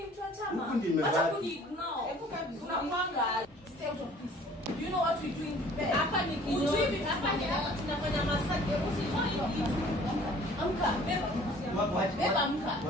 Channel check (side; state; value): both; normal; correlation 0.52